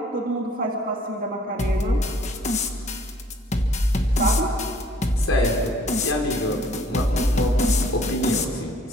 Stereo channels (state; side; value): normal; both; correlation 0.59